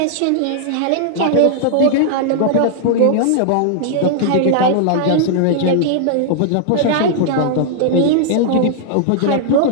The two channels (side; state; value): both; different; correlation -0.01